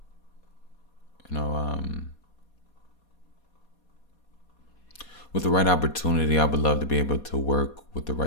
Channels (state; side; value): late; right; 4.2 ms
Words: You know, with the right opportunity, I would love to be able to work with the